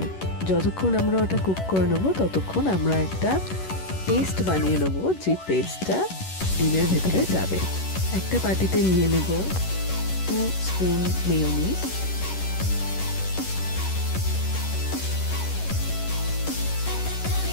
যতক্ষণ আমরা ওটা কুক করে নেবো ততক্ষণ আমরা একটা পেস্ট বানিয়ে নেব, যে পেস্টটা ডিমের ভেতরে যাবে। একটা বাটিতে নিয়ে নেব 2 স্পুন মেয়োনিজ,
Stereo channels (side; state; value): right; late; 11 ms